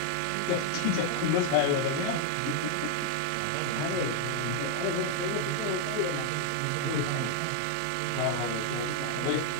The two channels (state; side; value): different; both; correlation 0.00